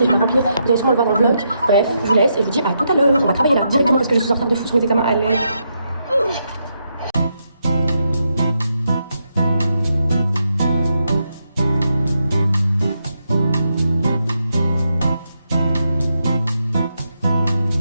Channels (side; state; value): both; inverted; correlation -0.82